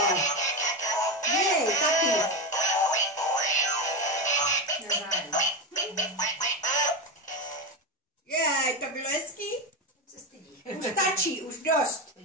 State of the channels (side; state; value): both; normal; correlation 0.15